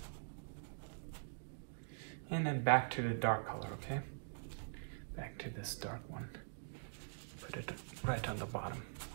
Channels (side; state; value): left; silent; digital silence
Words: and then back to the dark color, okay? Back to this dark one. Put it right on the bottom.